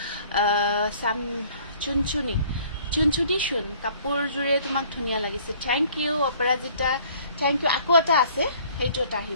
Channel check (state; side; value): inverted; both; correlation -0.55